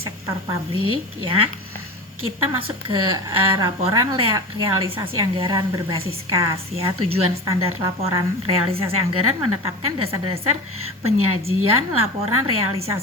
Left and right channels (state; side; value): normal; both; correlation 0.30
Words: publik ya. Kita masuk ke laporan realisasi anggaran berbasis kas ya. Tujuan standar laporan realisasi anggaran menetapkan dasar-dasar penyajian laporan